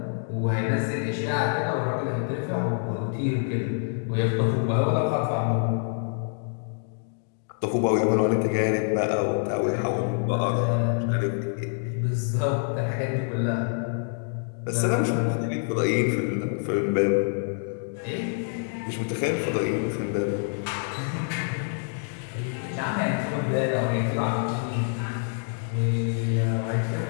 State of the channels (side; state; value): right; silent; 61 dB below the other